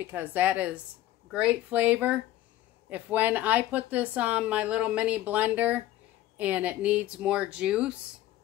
that is great flavor. If when I put this on my little mini blender and it needs more juice,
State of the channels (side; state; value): right; quieter; 14.6 dB